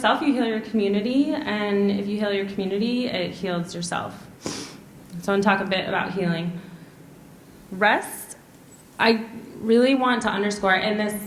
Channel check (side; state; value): both; identical; correlation 1.00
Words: you heal your community, and if you heal your community, it heals yourself. So I want to talk a bit about healing. Rest, I really want to underscore in this